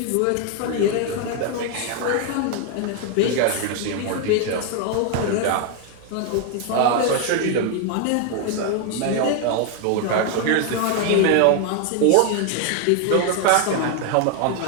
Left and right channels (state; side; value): different; both; correlation 0.01